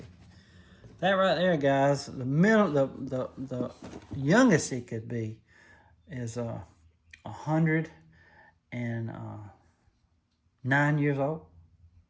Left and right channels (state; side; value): identical; both; correlation 1.00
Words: That right there, guys, the youngest it could be is 109 years old.